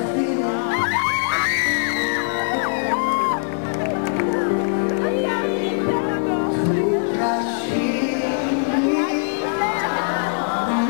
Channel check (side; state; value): right; silent; digital silence